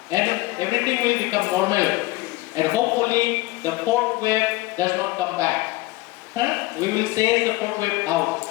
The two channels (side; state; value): right; quieter; 20.4 dB